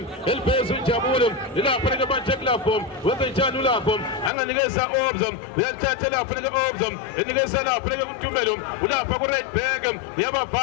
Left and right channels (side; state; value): right; drops out; at 4.3 s